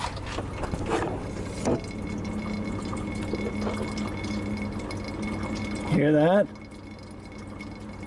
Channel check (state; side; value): identical; both; correlation 1.00